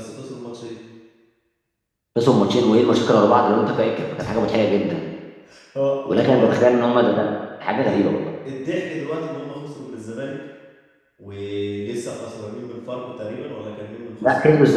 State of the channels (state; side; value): identical; both; correlation 1.00